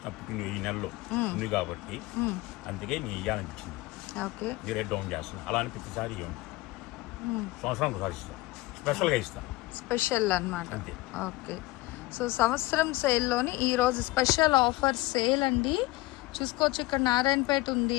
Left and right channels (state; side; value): quieter; right; 20.0 dB